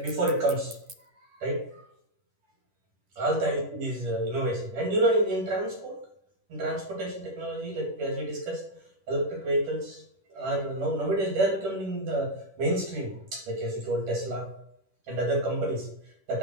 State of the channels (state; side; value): late; left; 10 ms